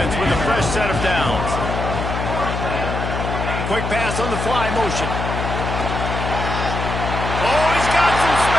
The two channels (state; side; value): noise; left; hum, 3 dB below the sound